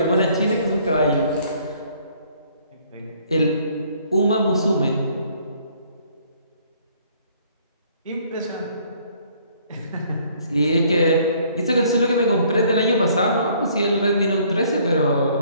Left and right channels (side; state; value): both; inverted; correlation -0.61